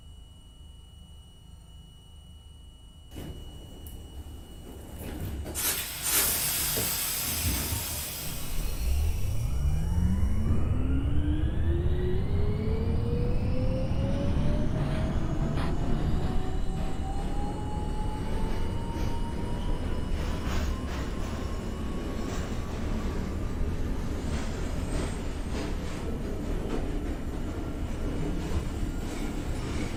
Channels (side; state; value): both; identical; correlation 1.00